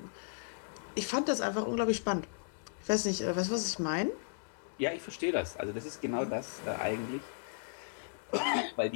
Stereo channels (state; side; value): silent; right; digital silence